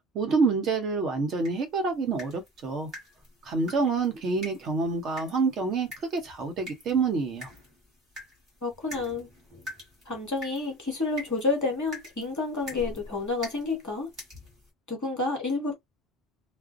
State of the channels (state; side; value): normal; both; correlation 0.37